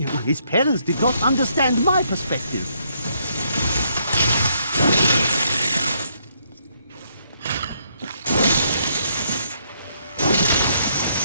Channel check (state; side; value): inverted; both; correlation -0.72